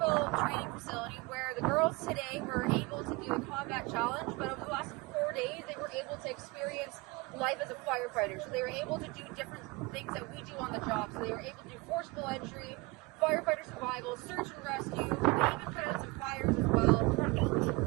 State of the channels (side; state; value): left; quieter; 24.8 dB